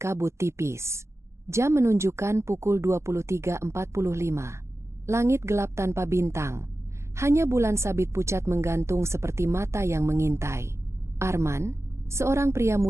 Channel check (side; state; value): left; late; 0.13 ms